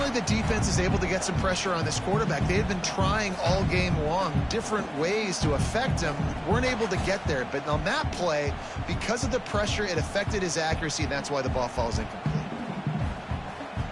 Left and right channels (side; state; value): both; identical; correlation 1.00